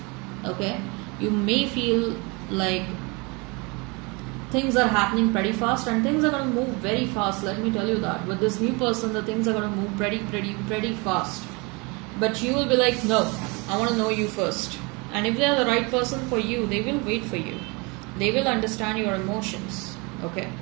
Okay, you may feel like things are happening pretty fast, and things are going to move very fast. Let me tell you that with this new person, the things are going to move pretty fast. But you will be like, no, I want to know you first. And if they are the right person for you, they will wait for you. They will understand your emotions. Okay,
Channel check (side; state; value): left; quieter; 28.5 dB